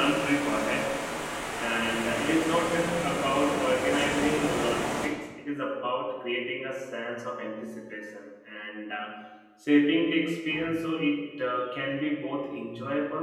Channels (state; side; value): identical; both; correlation 1.00